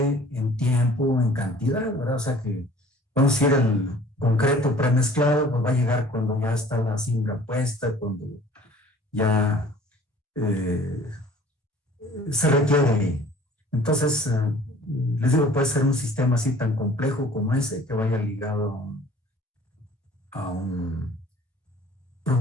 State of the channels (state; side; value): normal; both; correlation 0.50